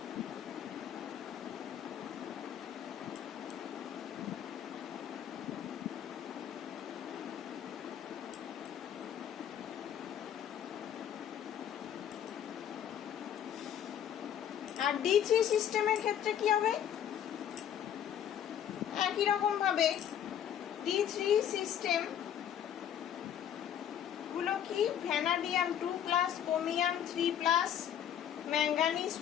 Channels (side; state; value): right; quieter; 9.7 dB